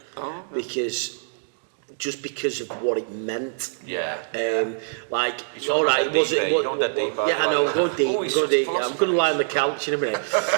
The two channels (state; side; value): silent; left; digital silence